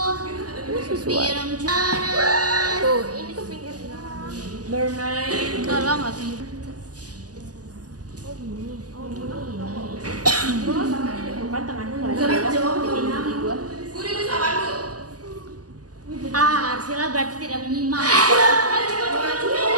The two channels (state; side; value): late; left; 0.67 ms